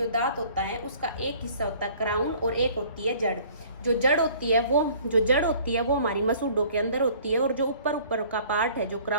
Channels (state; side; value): inverted; both; correlation -0.53